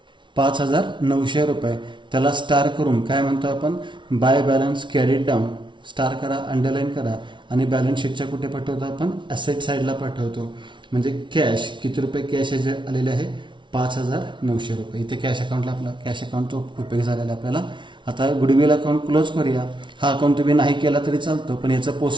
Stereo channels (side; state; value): left; late; 0.24 ms